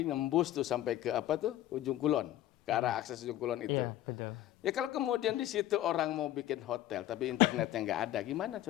nembus tuh sampai ke ujung kulon, ke arah akses ujung kulon itu. Iya, betul. Ya kalau kemudian di situ orang mau bikin hotel tapi internetnya nggak ada, gimana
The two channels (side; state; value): right; quieter; 13.7 dB